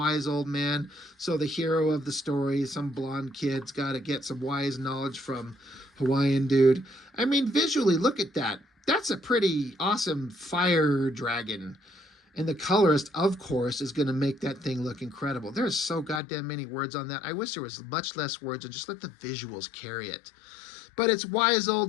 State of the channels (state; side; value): drops out; right; at 16.2 s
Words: old man. So the hero of the story, some blonde kid's got to get some wise knowledge from Hawaiian dude. I mean, visually, look at that. That's a pretty awesome fire dragon. And the colorist, of course, is going to make that thing look incredible. There's so goddamn many words on that. I wish there was much less words and just let the visuals carry it. But it's wise